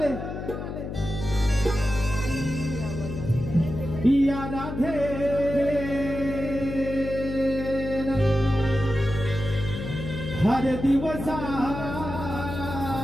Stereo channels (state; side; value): noise; left; hum, 7 dB below the sound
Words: या राधे हर दिवसा